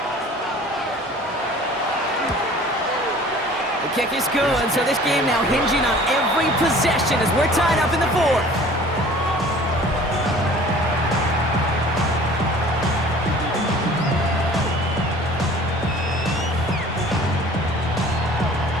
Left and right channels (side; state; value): both; normal; correlation 0.48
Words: The kick is good, so this game now hinging on every possession as we're tied up in the fourth.